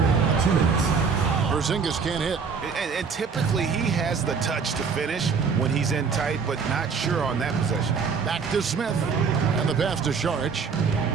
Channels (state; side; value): quieter; left; 5.6 dB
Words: 2 minutes. Porzingis can't hit. And typically, he has the touch to finish when he's in tight, but not sure on that possession. Back to Smith. And the pass to Saric.